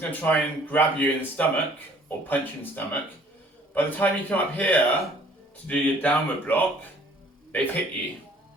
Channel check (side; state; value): both; normal; correlation 0.57